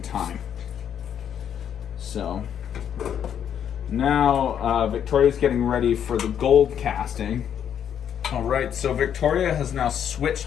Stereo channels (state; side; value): quieter; right; 9.0 dB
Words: time. So now Victoria's getting ready for the gold casting. All right, so Victoria has now switched